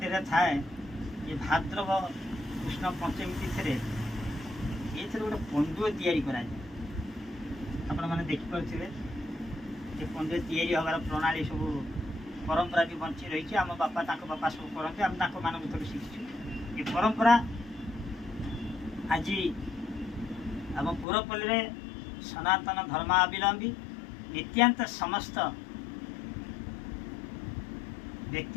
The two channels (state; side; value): drops out; right; at 21.1 s